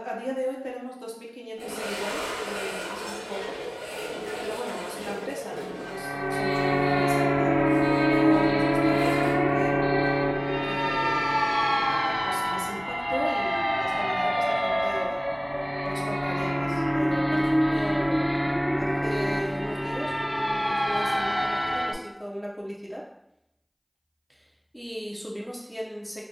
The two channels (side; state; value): both; identical; correlation 1.00